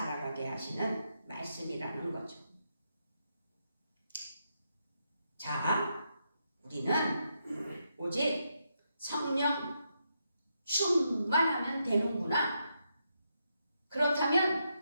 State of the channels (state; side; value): inverted; both; correlation -0.82